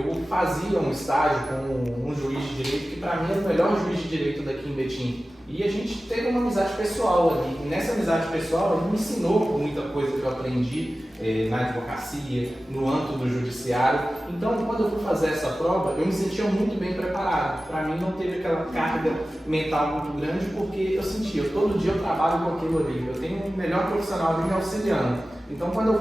fazia um estágio com um juiz de direito que, para mim, era o melhor juiz de direito daqui em Betim. E a gente teve uma amizade pessoal ali. E nessa amizade pessoal, ele me ensinou muita coisa que eu aprendi na advocacia, no âmbito do judiciário. Então, quando eu fui fazer essa prova, eu me sentia muito bem preparado. Para mim, não teve aquela carga mental muito grande, porque eu sentia, todo dia eu trabalho com aquilo ali. Eu tenho um melhor profissional ali me auxiliando. Então, quando eu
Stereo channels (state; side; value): normal; both; correlation 0.95